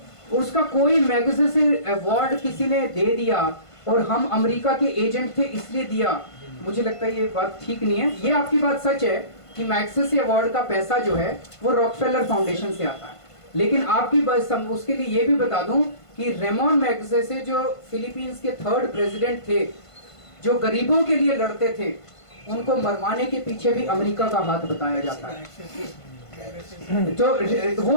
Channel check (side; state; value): right; late; 1.5 ms